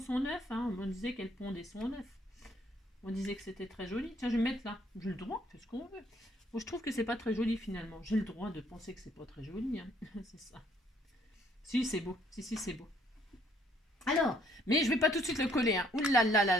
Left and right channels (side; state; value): both; normal; correlation 0.65